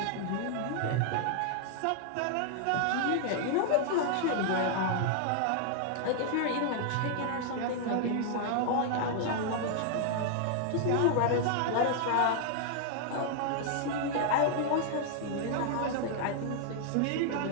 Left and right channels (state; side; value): different; both; correlation 0.00